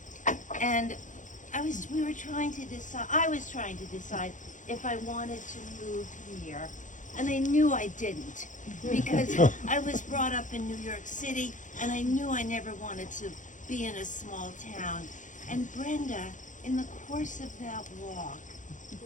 and I was trying to decide if I wanted to move here, and I knew I didn't, because I was brought up in New York City, and I knew I never wanted to be in a small town, and Brenda, in the course of that walk,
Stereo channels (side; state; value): right; late; 0.37 ms